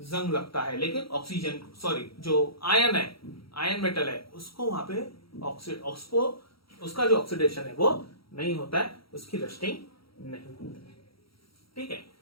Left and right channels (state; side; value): late; right; 0.75 ms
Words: जंग लगता है, लेकिन ऑक्सीजन, सॉरी, जो आयन है, आयन मेटल है, उसको वहां पे उसको उसका जो ऑक्सीडेशन है वो नहीं होता है, उसकी रस्टिंग नहीं होती है। ठीक है,